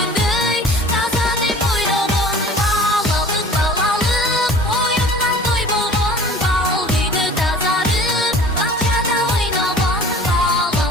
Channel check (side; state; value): both; normal; correlation 0.44